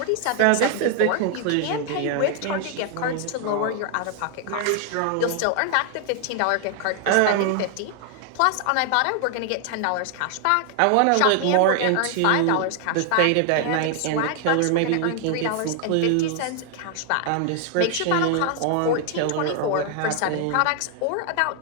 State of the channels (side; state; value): both; different; correlation 0.00